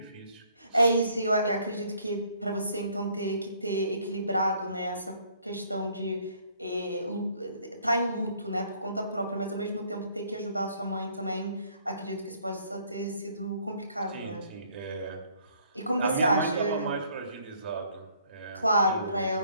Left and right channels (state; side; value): inverted; both; correlation -0.63